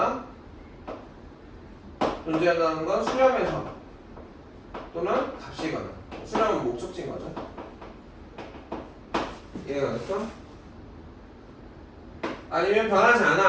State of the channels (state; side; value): identical; both; correlation 1.00